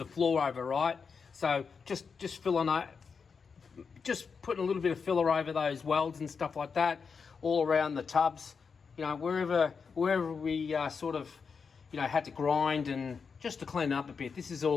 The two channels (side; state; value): right; quieter; 5.6 dB